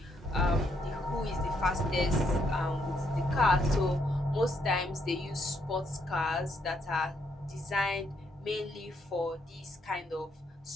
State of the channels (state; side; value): normal; both; correlation 0.74